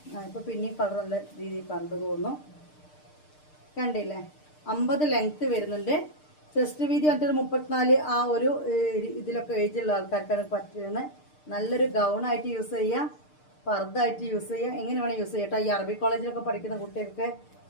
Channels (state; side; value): late; right; 6.6 ms